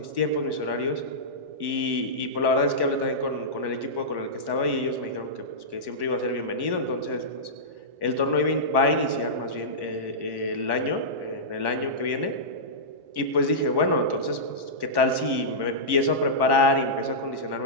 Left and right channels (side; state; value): left; late; 1.1 ms